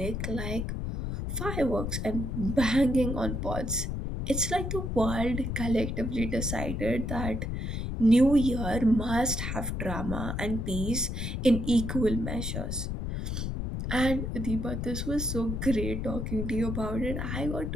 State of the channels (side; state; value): left; noise; rumble, 3 dB below the sound